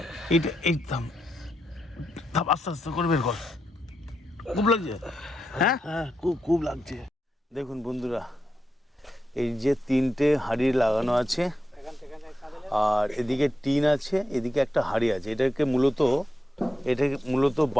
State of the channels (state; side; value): normal; both; correlation 0.86